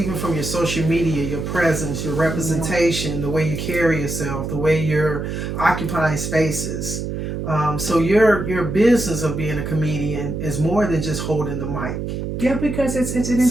from your social media, your presence, your representation, the way you carry yourself, the way you're occupying spaces. So your business of being a comedian is more than just holding the mic. Yeah, because it's an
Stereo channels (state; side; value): noise; right; hum, 4 dB below the sound